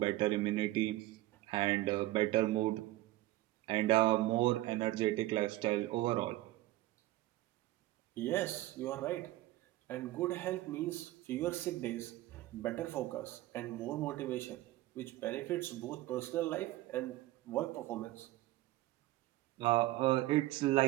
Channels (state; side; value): quieter; left; 17.0 dB